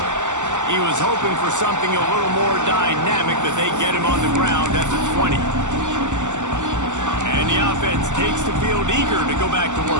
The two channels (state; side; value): late; left; 0.85 ms